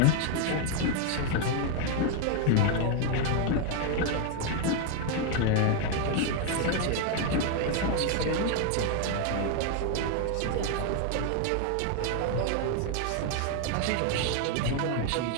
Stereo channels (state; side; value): different; both; correlation 0.01